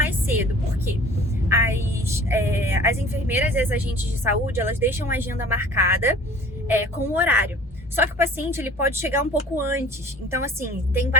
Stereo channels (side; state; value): both; normal; correlation 0.46